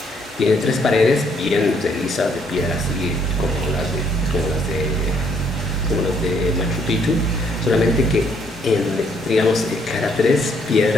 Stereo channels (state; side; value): normal; both; correlation 0.68